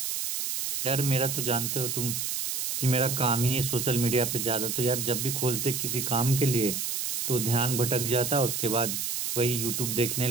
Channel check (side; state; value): right; noise; hiss, 1 dB below the sound